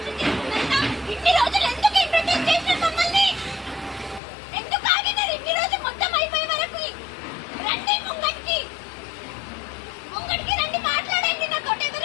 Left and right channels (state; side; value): drops out; right; at 4.2 s